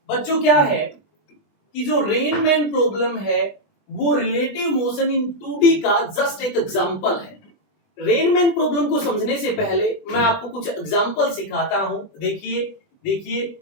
बच्चों क्या है कि जो रेन मैन प्रॉब्लम है वो रिलेटिव मोशन इन 2D का जस्ट एक एग्जांपल है। रेन मैन प्रॉब्लम को समझने से पहले मैं आपको कुछ एग्जांपल सिखाता हूं। देखिए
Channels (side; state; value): right; late; 20 ms